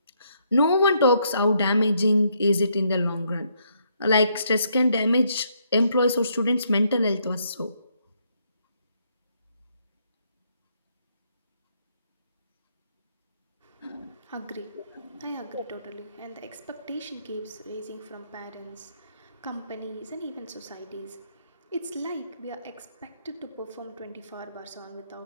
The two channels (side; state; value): both; inverted; correlation -0.73